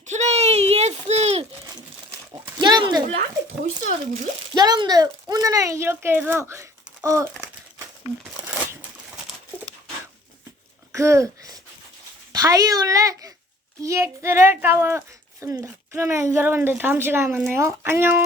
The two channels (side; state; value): both; normal; correlation 0.53